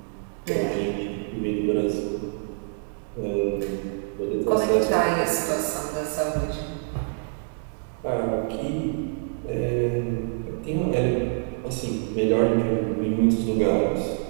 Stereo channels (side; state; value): left; silent; 56 dB below the other